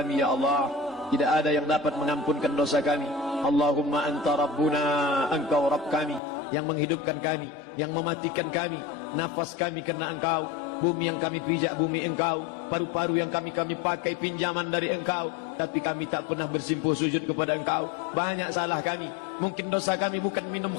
ya Allah. Tidak ada yang dapat mengampunkan dosa kami. Allahumma anta rabbuna, engkau Rabb kami, yang menghidupkan kami, yang mematikan kami, nafas kami karena engkau, bumi yang kami pijak bumi engkau, paru-paru yang kami pakai pinjaman dari engkau, tapi kami tak pernah bersimpuh sujud kepada engkau. Banyak salah kami. Mungkin dosa kami bukan minum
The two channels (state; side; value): drops out; right; at 6.2 s